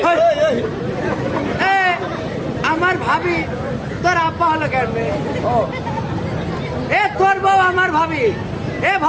আমার ভাবি তোর আব্বা হলো কেন? এ তোর বউ আমার ভাবি। এ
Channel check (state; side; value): identical; both; correlation 1.00